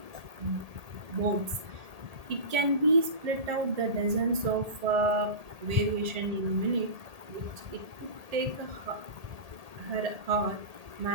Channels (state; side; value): late; left; 1.8 ms